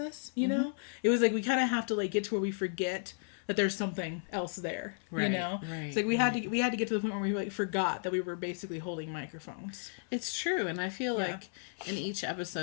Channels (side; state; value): right; silent; 55 dB below the other